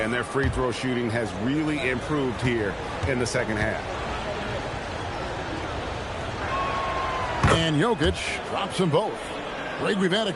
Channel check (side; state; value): both; identical; correlation 1.00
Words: and their free throw shooting has really improved here in the second half. And Jokic drops them both. Greg, we've had a